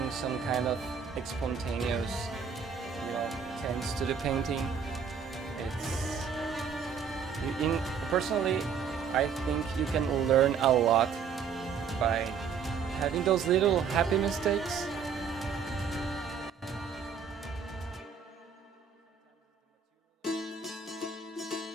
some kind of spontaneous, you know, tints to the painting. Personally, I think you can learn a lot by having those little happy mistakes.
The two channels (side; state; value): left; quieter; 6.4 dB